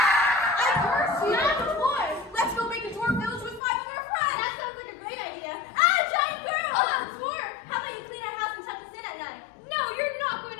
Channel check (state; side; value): drops out; right; at 3.6 s